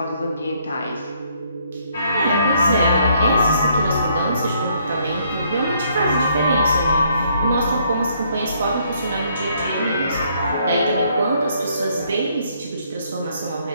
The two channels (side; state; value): both; inverted; correlation -0.68